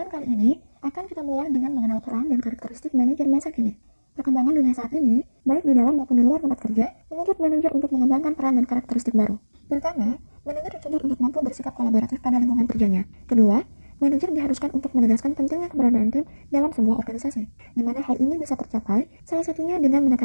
kali ini akan kita mulai dengan mengenal peran dan karakteristik manajer masa kini. Perkembangan dunia saat ini, baik di dalam maupun di luar tempat kerja, menuntut manajer untuk mengembangkan peran dan karakteristik baru. Pertama, manajer dituntut untuk mampu bersikap kolaboratif pada lingkungan kerjanya. Kedua, manajer diharuskan untuk menegaskan pentingnya keberadaan tim dalam sebuah organisasi, di mana hal ini bisa tercapai salah satunya dengan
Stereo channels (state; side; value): inverted; both; correlation -1.00